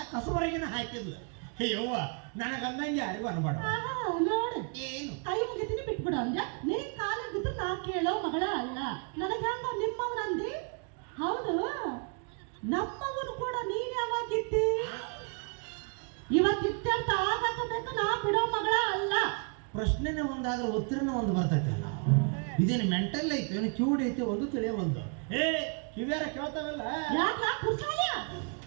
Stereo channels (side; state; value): left; quieter; 38.2 dB